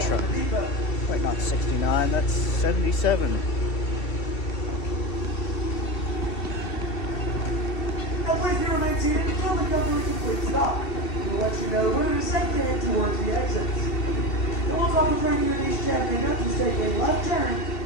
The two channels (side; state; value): right; late; 2.7 ms